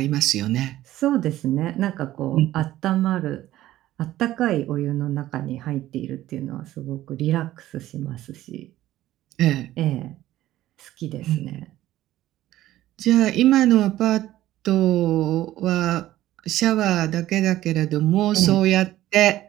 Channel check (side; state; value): left; quieter; 14.5 dB